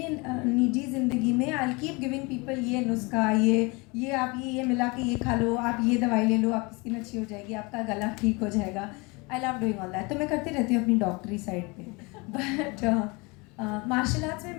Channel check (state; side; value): quieter; right; 27.2 dB